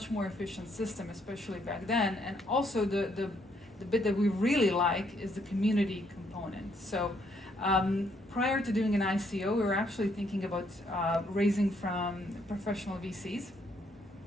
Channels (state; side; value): normal; both; correlation 0.71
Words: more efficient system, especially back then, and also the bit that we really like is the community component. So prior to doing an ICO, we were actually thinking about raising from professional VCs.